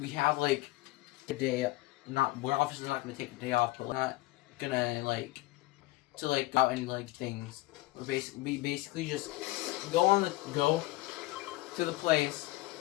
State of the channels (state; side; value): quieter; right; 19.7 dB